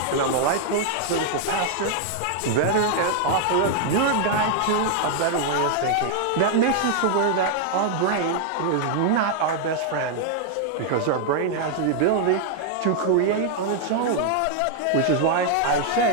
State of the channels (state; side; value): different; both; correlation 0.00